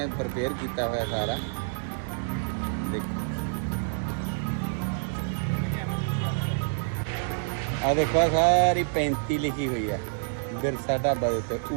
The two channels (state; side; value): silent; left; digital silence